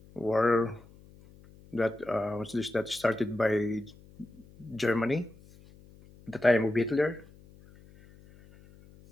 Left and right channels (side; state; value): left; noise; hum, 24 dB below the sound